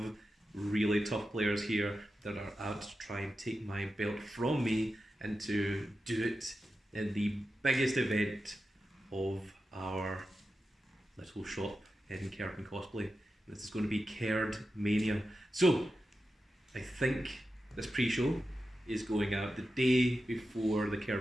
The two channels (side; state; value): both; normal; correlation 0.91